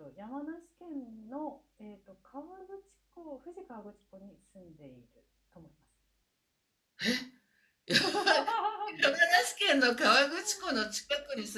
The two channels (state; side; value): identical; both; correlation 1.00